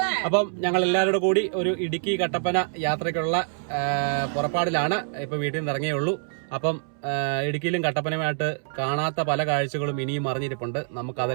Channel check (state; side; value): silent; left; 61 dB below the other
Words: അപ്പം ഞങ്ങൾ എല്ലാവരുടെ കൂടി ഒരു ഇടുക്കി കട്ടപ്പന യാത്രയ്ക്കുള്ള പുറപ്പാടിലാണ്. ഇപ്പൊ വീട്ടിൽ നിന്ന് ഇറങ്ങിയേ ഉള്ളൂ. അപ്പം ഇടുക്കിയിലും കട്ടപ്പനയുമായിട്ട് കാണാത്ത പല കാഴ്ചകളും ഇനിയും അറിഞ്ഞിരിപ്പുണ്ട്.